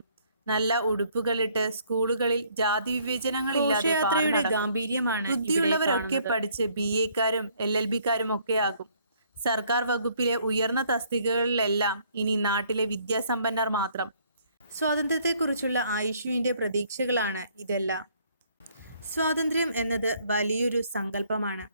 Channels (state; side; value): inverted; both; correlation -0.64